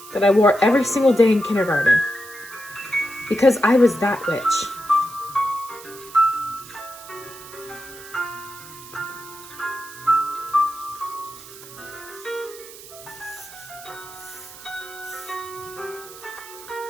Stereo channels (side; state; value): right; noise; hiss, 17 dB below the sound